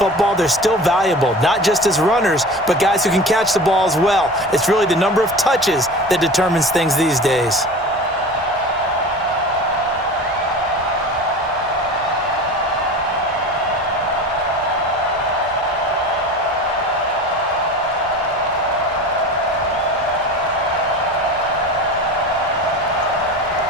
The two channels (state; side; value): normal; both; correlation 0.35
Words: they're still valuable, not just as runners, but guys who can catch the ball as well. It's really the number of touches that determines things these days.